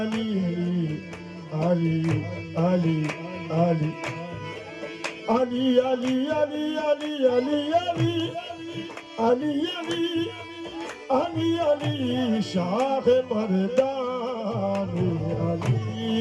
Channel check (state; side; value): identical; both; correlation 1.00